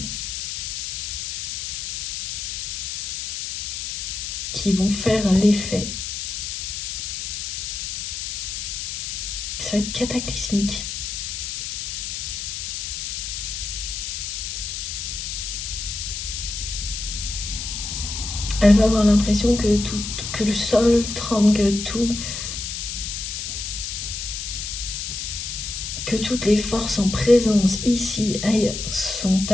qui vont faire l'effet. Ça va être cataclysmique. Elle va avoir l'impression que le sol tremble, que toutes les forces en présence, ici, ailleurs, sont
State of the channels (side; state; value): left; noise; hiss, 4 dB below the sound